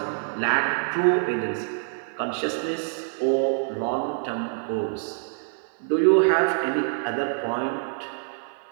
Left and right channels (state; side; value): silent; left; 55 dB below the other